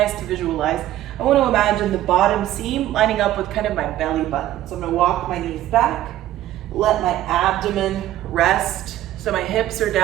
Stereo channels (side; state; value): left; quieter; 13.7 dB